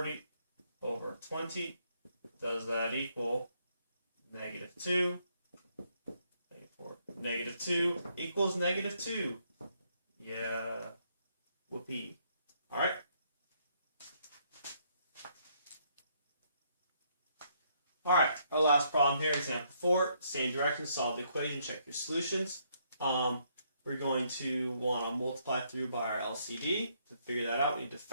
over 20. Does that equal negative 2? Negative 4. Negative 2 equals negative 2. Yeah. Whoopee. Alright. Alright, our last problem here, example 4. Same direction, solve the equation, check your solutions. We're going to want to multiply through by our LCD. To figure that out, we need to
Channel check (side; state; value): both; inverted; correlation -0.71